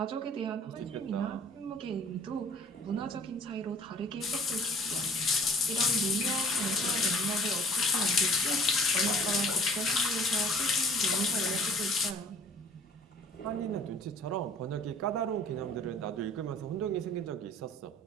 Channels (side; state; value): both; normal; correlation 0.53